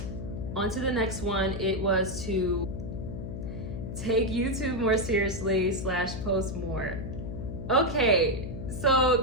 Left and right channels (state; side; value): noise; left; hum, 7 dB below the sound